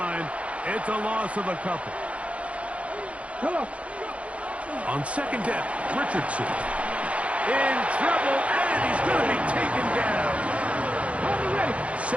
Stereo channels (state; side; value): late; left; 0.063 ms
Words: It's a loss of a couple. On 2nd down, Richardson. In trouble, and he's going to be taken down.